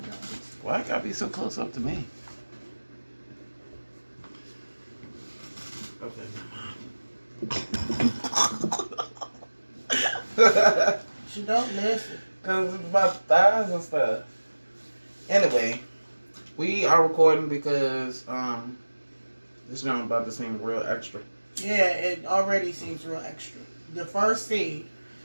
Joneses. Why it gotta be so close up to me? Okay. She don't listen. Cause it's about thighs and stuff. Anyway, we are recording because this is about to seem real extra. Yeah, it already seems real extra. The first scene,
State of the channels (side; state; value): both; inverted; correlation -1.00